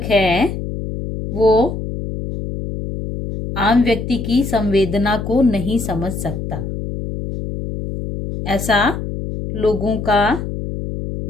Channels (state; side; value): noise; left; hum, 6 dB below the sound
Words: है वो आम व्यक्ति की संवेदना को नहीं समझ सकता, ऐसा लोगों का